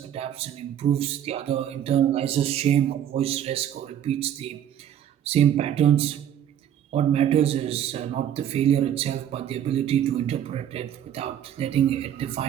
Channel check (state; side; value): quieter; left; 10.2 dB